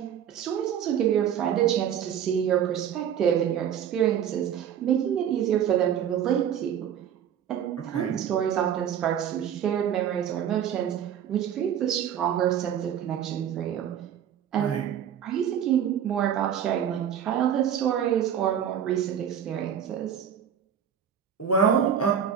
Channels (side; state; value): left; quieter; 9.0 dB